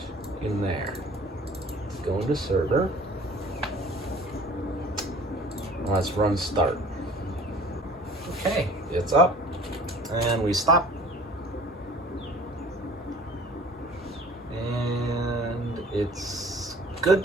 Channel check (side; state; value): both; normal; correlation 0.47